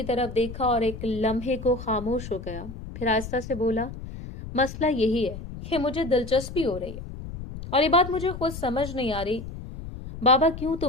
طرف دیکھا اور ایک لمحے کو خاموش ہو گیا، پھر آہستہ سے بولا، مسئلہ یہی ہے کہ مجھے دلچسپی ہو رہی ہے، اور یہ بات مجھے خود سمجھ نہیں آ رہی بابا کیوں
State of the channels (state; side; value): noise; left; rumble, 10 dB below the sound